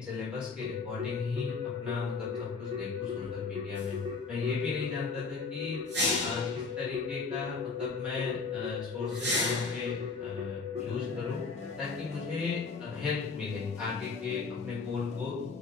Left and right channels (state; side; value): quieter; right; 4.6 dB